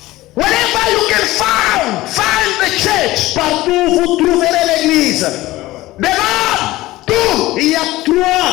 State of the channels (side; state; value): right; quieter; 17.8 dB